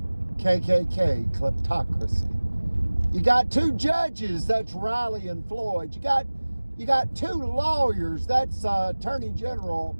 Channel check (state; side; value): inverted; both; correlation -1.00